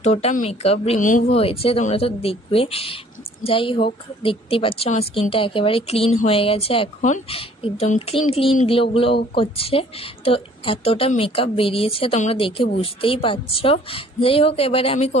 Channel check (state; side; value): normal; both; correlation 0.55